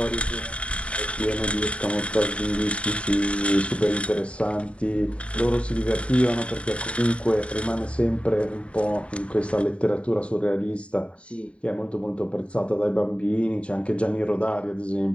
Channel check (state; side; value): late; right; 0.061 ms